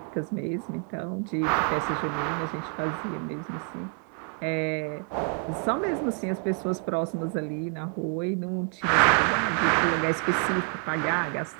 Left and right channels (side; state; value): left; quieter; 39.2 dB